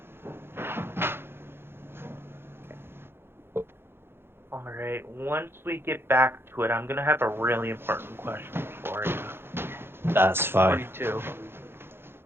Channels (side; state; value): left; late; 0.11 ms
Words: Alright, once we get back to it, I'm gonna have a really important question for you. That's fine. 22.